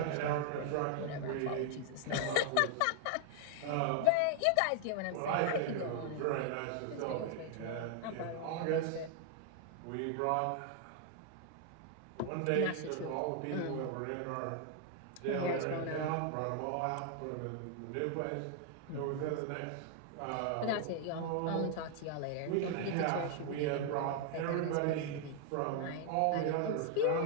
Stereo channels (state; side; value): different; both; correlation 0.00